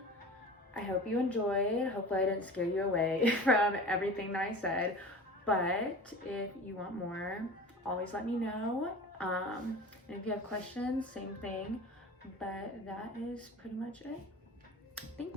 I hope you enjoyed. Hopefully I didn't scare you away from everything that I said, but if you want more, always let me know. And if you have questions, same thing, but that is pretty much it.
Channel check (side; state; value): both; normal; correlation 0.37